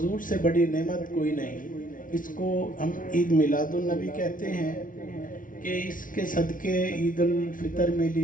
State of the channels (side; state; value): right; late; 0.39 ms